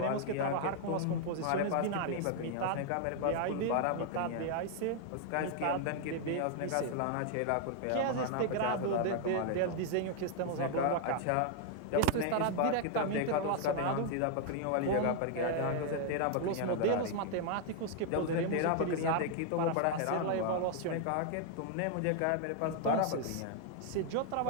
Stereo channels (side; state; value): both; different; correlation 0.00